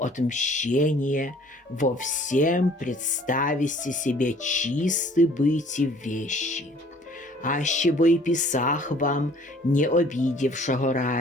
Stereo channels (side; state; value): both; normal; correlation 0.54